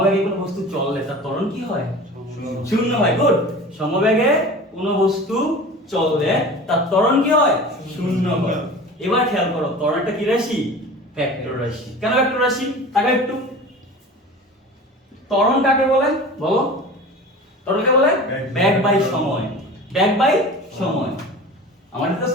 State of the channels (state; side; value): normal; both; correlation 0.37